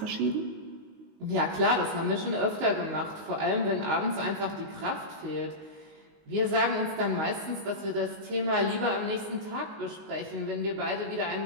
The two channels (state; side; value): late; left; 19 ms